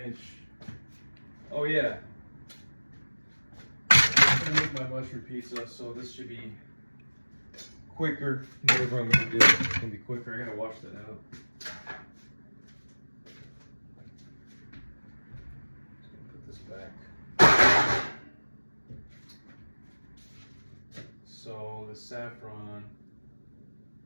Oh yeah. I'm gonna make my mushroom pizza, so this should be quicker. Whatever I'm gonna do, it's gonna be quicker. I gotta wash that out. Just gonna put this back. So the saffron.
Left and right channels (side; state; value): both; inverted; correlation -1.00